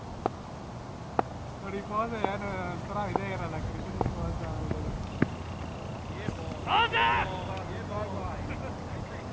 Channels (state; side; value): identical; both; correlation 1.00